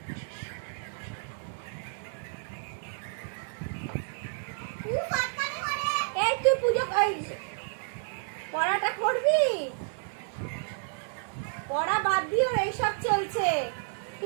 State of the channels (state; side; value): silent; left; digital silence